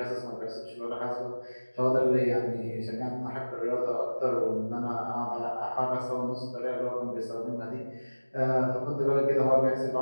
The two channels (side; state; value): both; inverted; correlation -1.00